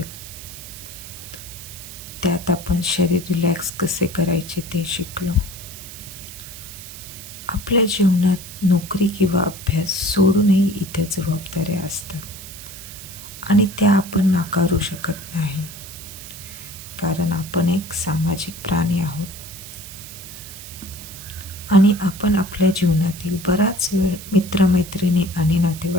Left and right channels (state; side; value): noise; right; hiss, 13 dB below the sound